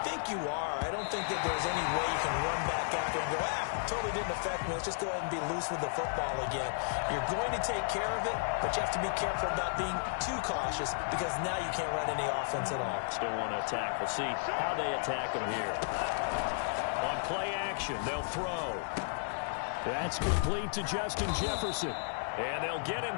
think you are. I don't think that there's any way you can run back after and go, totally didn't affect me. Let's just go ahead and be loose with the football again. You're going to take care of it, but you have to be careful about being too cautious because now you can't run any offense at all. Still want to attack. We'll see how they attack them here. On play action, they'll throw. That's complete to Justin Jefferson. And they'll get him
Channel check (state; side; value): silent; right; 55 dB below the other